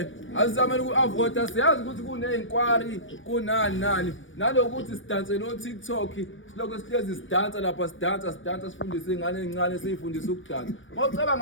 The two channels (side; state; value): right; late; 0.56 ms